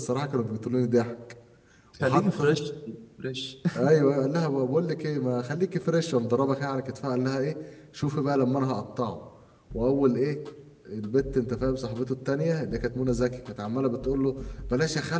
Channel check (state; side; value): identical; both; correlation 1.00